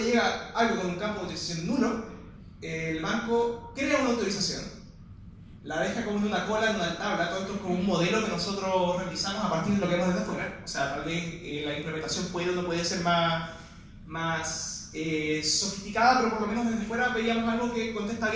llega algo con un campo de autorización nulo, el banco crea una autorización, la deja como en una cola, en una tabla. Todo esto es como un modelo que nosotros realizamos a partir de lo que vemos desde afuera. O sea, tal vez la implementación puede o no puede ser más sofisticada, pero por lo menos desde fuera veíamos algo que contesta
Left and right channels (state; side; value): identical; both; correlation 1.00